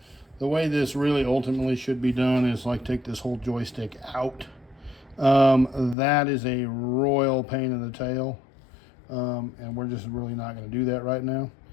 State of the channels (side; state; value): right; drops out; at 6.0 s